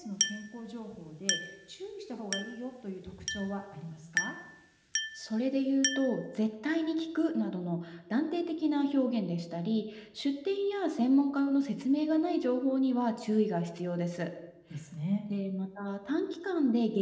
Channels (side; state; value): both; identical; correlation 1.00